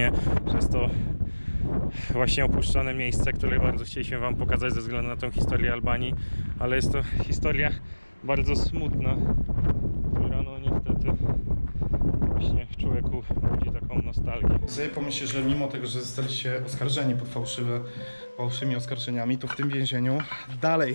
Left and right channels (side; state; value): both; inverted; correlation -1.00